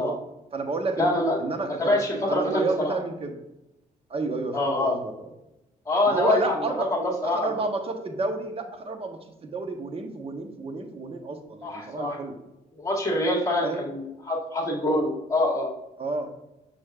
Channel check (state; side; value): normal; both; correlation 0.50